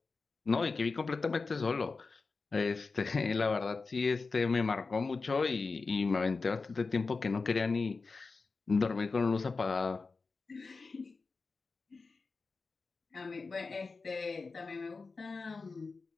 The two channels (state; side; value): quieter; right; 4.2 dB